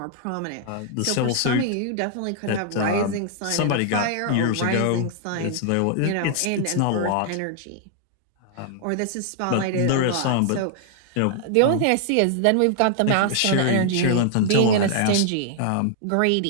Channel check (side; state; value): both; different; correlation 0.00